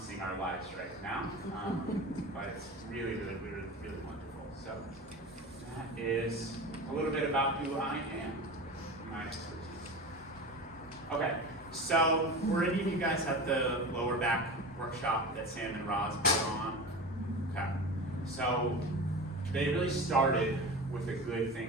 our lives right now. But it's really wonderful. So that is a little bit about who I am, my expertise. Okay, so were any of you guys at the lower back workshop that Sam and Roz put on? Okay, so they really started with a good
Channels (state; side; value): normal; both; correlation 0.30